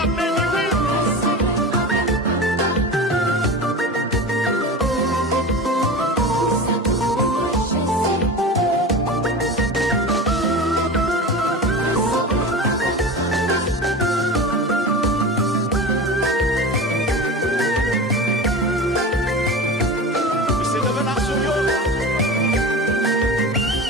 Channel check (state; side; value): normal; both; correlation 0.30